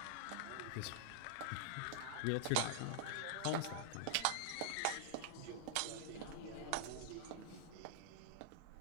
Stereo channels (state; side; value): different; both; correlation -0.01